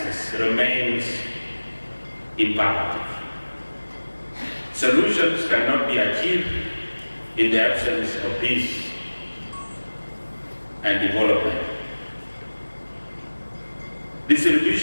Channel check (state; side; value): inverted; both; correlation -1.00